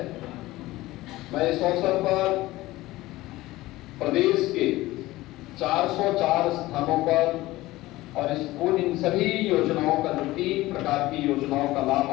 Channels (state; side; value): quieter; right; 18.1 dB